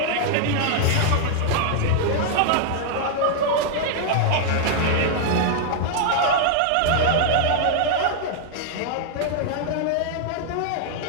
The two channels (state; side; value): different; both; correlation -0.01